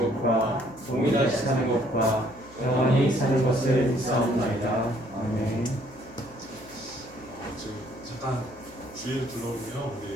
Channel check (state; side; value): noise; left; hum, 24 dB below the sound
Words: 동이 다시 사는 것과 영원히 사는 것을 믿사옵나이다. 아멘. 지금 잠깐 주위를 둘러보면